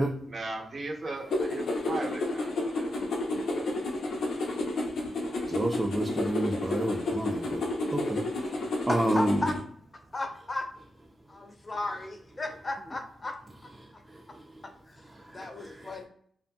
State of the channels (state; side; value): normal; both; correlation 0.86